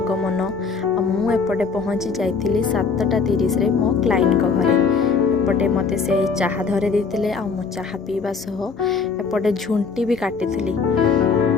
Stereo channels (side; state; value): right; quieter; 5.2 dB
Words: मु एपटे पहुँची जाइली 7:30 रे मो क्लाइंट घरे। एपटे मते से चाहा धरे देते आ मो चाहा पीवा सह एपटे झुंटी भी काटी।